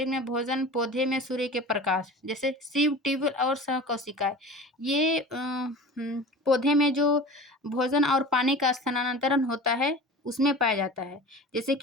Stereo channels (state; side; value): normal; both; correlation 0.37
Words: में भोजन, पौधे में सूर्य के प्रकाश, जैसे सिव ट्यूब और सह कोशिकाएं ये पौधे में जो भोजन और पानी का स्थानांतरण होता है उसमें पाया जाता है। जैसे